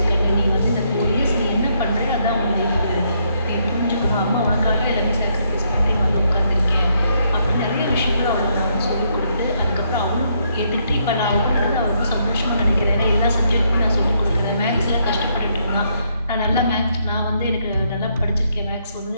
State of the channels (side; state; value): both; inverted; correlation -0.74